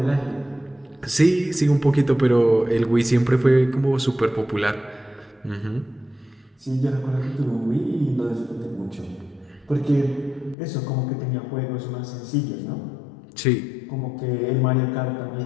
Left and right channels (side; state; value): right; drops out; at 10.6 s